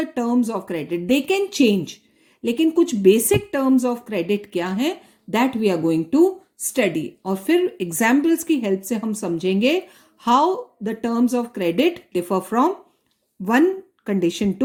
the terms of credit. They can change. लेकिन कुछ basic terms of credit क्या हैं that we are going to study. और फिर examples की help से हम समझेंगे how the terms of credit differ from one condition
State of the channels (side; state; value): both; identical; correlation 1.00